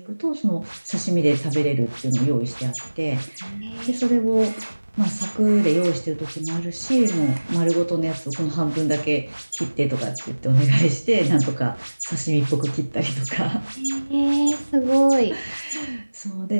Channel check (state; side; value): inverted; both; correlation -1.00